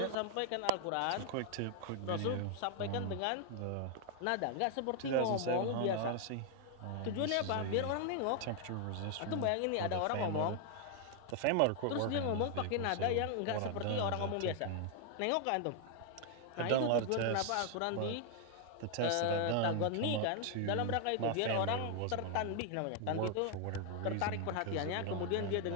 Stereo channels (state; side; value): different; both; correlation 0.00